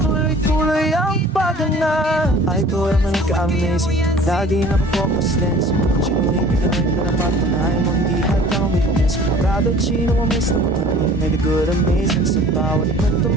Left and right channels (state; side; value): normal; both; correlation 0.48